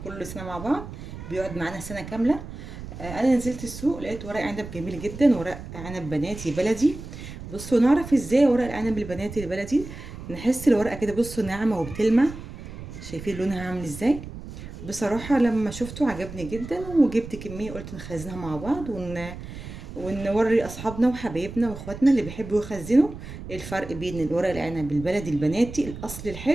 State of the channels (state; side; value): noise; right; rumble, 12 dB below the sound